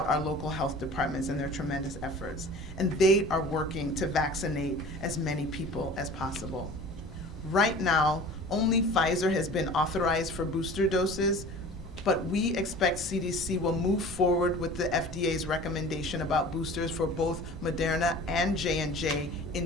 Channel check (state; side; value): normal; both; correlation 0.42